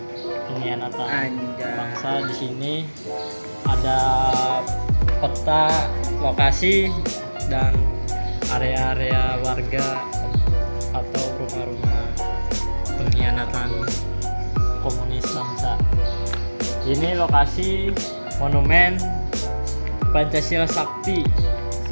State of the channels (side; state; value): both; inverted; correlation -1.00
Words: pengkhianatan bangsa. Di sini ada peta lokasi dan area-area warga atau rumah-rumah pengkhianatan komunis bangsa. Ini lokasi monumen Pancasila Sakti